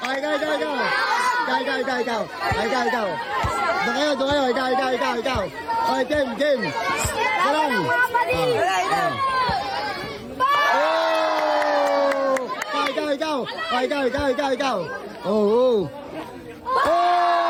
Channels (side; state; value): both; identical; correlation 1.00